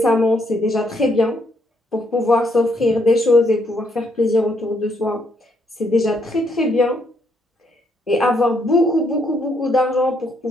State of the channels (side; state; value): both; normal; correlation 0.73